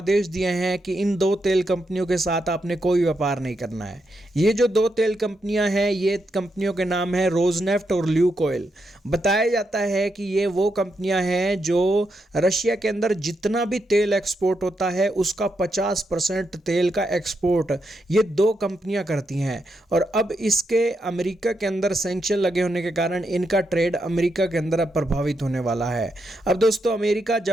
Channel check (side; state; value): both; normal; correlation 0.82